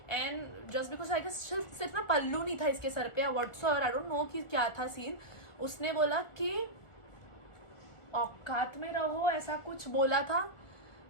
and just because I guess सिर्फ ना पल्लू नहीं था इसके सर पे या व्हाट्सएवर, आई डोंट नो कि क्या था सीन. उसने बोला कि औकात में रहो, ऐसा कुछ बोला था.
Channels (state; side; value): late; right; 1.4 ms